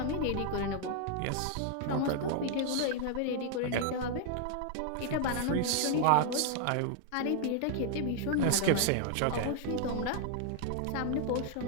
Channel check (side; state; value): both; different; correlation 0.00